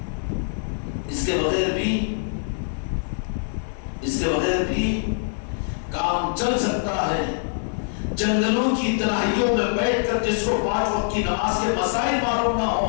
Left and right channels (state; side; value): silent; right; digital silence